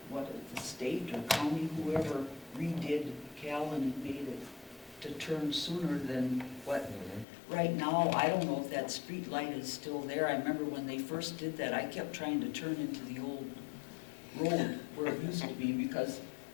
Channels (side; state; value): right; drops out; at 7.2 s